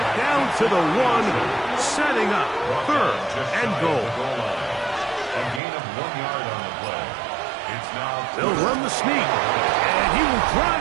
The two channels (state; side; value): drops out; left; at 5.6 s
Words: Down to the 1, setting up 3rd and goal. A gain of 1 yard on the play. It's now... They'll run the sneak. And he will